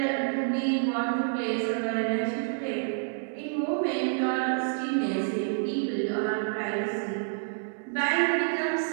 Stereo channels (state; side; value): silent; left; digital silence